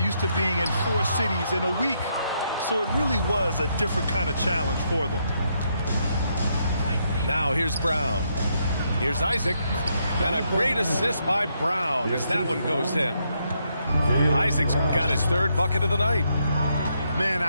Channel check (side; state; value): both; inverted; correlation -0.77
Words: to being in 4 cities in a week. So it really was a different kind of challenge for them. Now here's Brown. Here's Isaac. And a great assist by Brown as that one goes in. Isaac's got his third bucket of the night. Man,